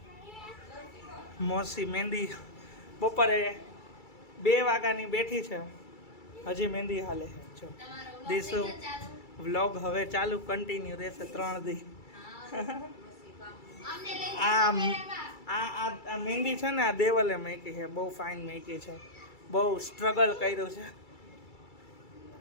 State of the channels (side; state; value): right; late; 2.3 ms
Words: મોસી મહેંદી બપોરે 2 વાગ્યાની બેઠી છે, હજી મહેંદી હાલે છે. જો દીસુ વ્લોગ હવે ચાલુ કન્ટિન્યુ રહેશે 3 દી. આ મહેંદી છે ને, આ દેવલે મૂકી છે. બહુ ફાઇન મૂકી છે, બહુ સ્ટ્રગલ કર્યું છે.